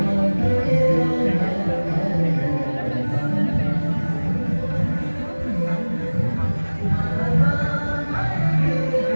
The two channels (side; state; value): both; inverted; correlation -1.00